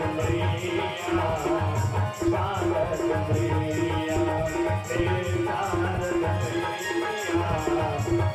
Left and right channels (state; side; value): identical; both; correlation 1.00